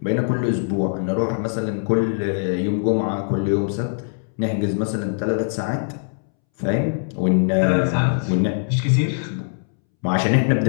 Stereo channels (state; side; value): silent; right; 64 dB below the other